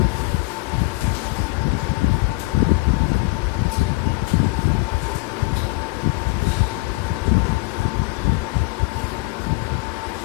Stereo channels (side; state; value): right; quieter; 24.9 dB